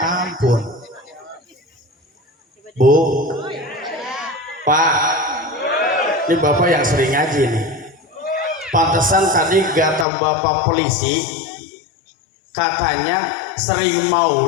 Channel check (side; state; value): right; drops out; at 10.1 s